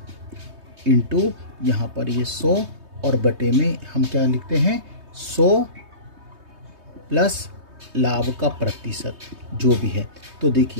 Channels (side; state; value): left; late; 3.2 ms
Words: इंटू यहाँ पर ये 100 और बटे में हम क्या लिखते हैं, 100 प्लस लाभ का प्रतिशत जो भी है। तो